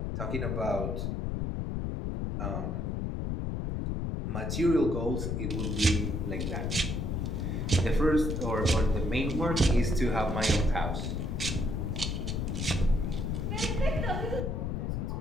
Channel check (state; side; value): noise; left; rumble, 1 dB below the sound